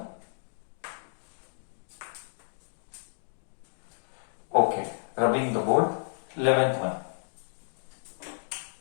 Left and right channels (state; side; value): silent; right; digital silence